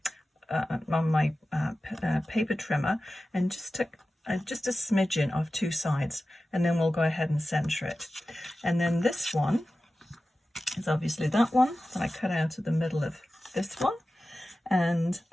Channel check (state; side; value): normal; both; correlation 0.94